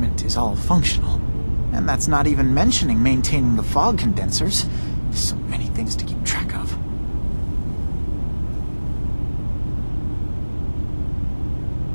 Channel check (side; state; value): both; inverted; correlation -1.00